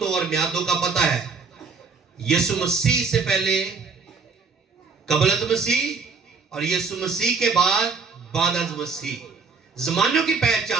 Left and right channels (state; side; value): quieter; left; 4.9 dB